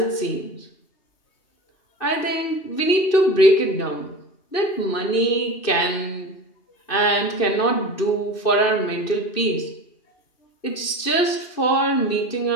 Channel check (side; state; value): right; late; 2.6 ms